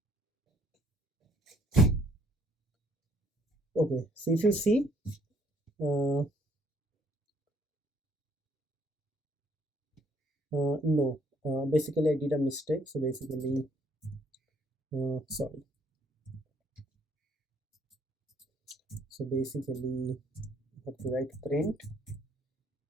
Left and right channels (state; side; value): normal; both; correlation 0.64